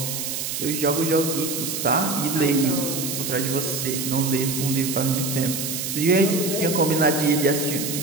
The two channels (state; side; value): noise; right; hiss, 4 dB below the sound